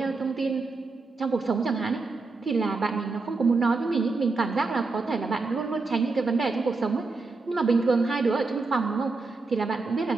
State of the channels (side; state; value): left; quieter; 3.8 dB